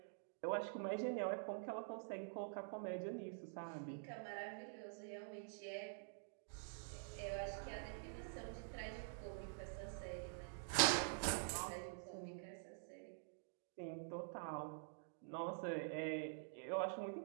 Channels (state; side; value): silent; left; digital silence